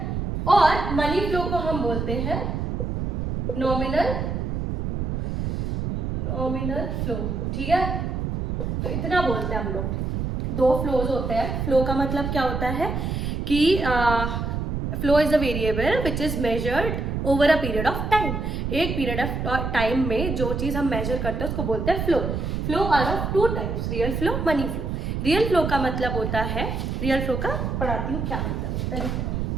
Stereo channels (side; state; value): right; noise; rumble, 2 dB below the sound